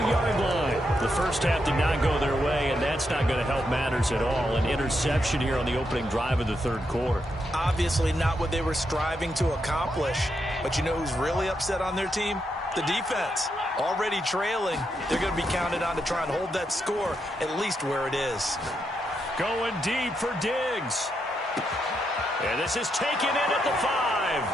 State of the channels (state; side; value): normal; both; correlation 0.82